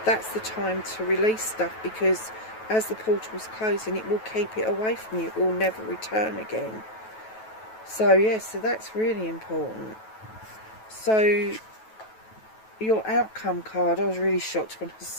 that's the time to release stuff, because as the portal's closing, it will keep it away from you. It will never return again. So yes, so that's really important. So your outcome card, I was really shocked when I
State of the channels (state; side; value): late; right; 9.2 ms